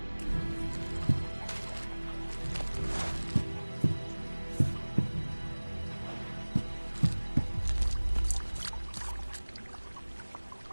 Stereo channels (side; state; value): both; inverted; correlation -1.00